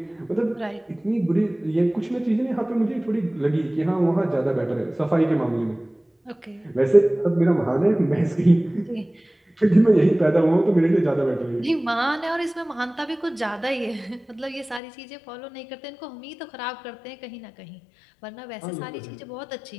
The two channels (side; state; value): right; drops out; at 14.8 s